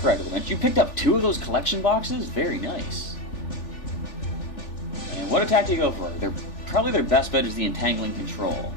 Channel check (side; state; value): right; late; 3.4 ms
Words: to the bench. You picked up 2 of those collection boxes? Very nice. And what attack do you go for? Probably their best bet is the Entangling Control.